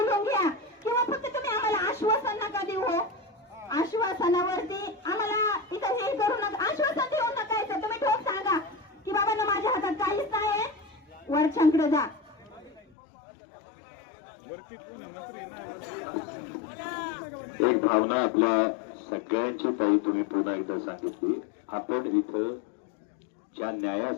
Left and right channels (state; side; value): drops out; right; at 12.8 s